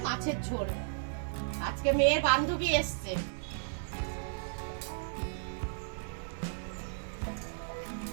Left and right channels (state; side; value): silent; left; digital silence